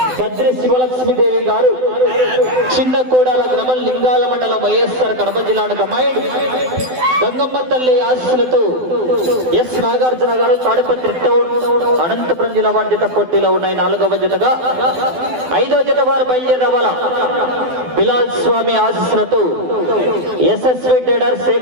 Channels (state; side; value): late; left; 12 ms